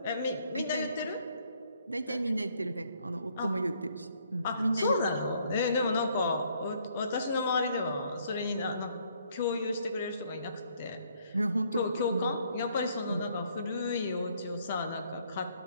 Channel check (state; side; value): inverted; both; correlation -0.67